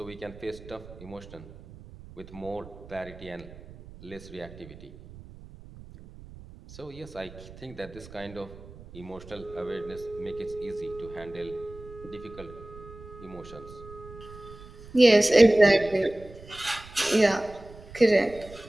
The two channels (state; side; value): noise; right; rumble, 18 dB below the sound